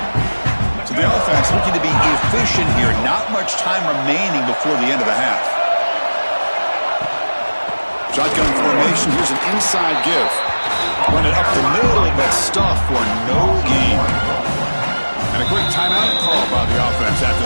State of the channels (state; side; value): inverted; both; correlation -1.00